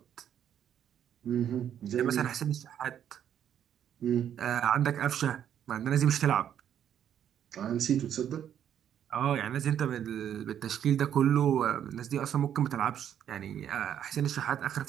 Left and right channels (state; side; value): quieter; left; 9.7 dB